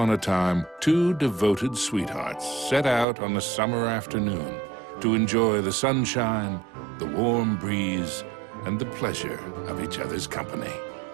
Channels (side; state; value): left; drops out; at 3.1 s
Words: a time, two devoted sweethearts set out on a summer afternoon to enjoy the sunshine, the warm breeze, and the pleasure of each other's company.